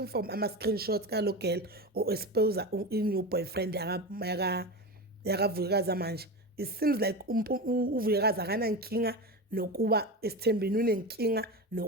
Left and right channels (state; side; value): normal; both; correlation 0.23